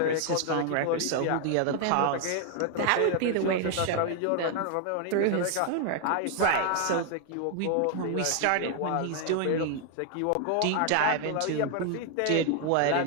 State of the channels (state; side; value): different; both; correlation 0.00